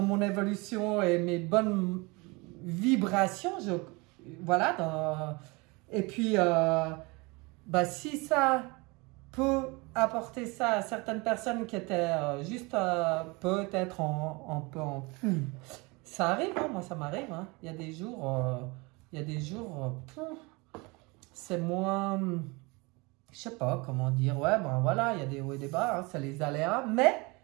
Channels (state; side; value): quieter; left; 26.4 dB